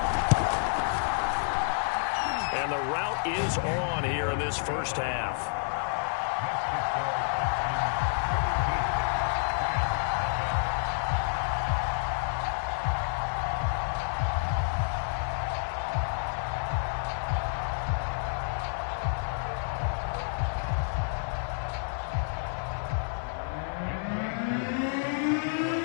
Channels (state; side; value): silent; right; 58 dB below the other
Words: And the route is on here in this first half.